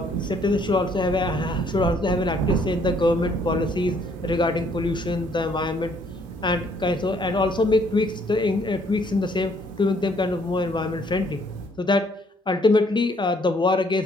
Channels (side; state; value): both; normal; correlation 0.65